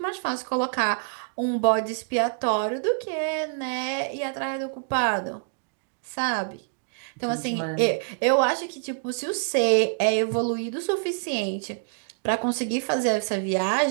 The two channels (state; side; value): silent; left; digital silence